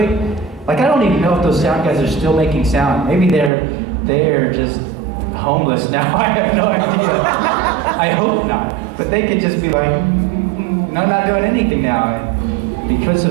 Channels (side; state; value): left; drops out; at 3.5 s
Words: like, I don't even know if those sound guys are still making sound. Maybe they're just homeless now. I have no idea. I hope not. But they could just be like, no, I'm not doing anything now. And because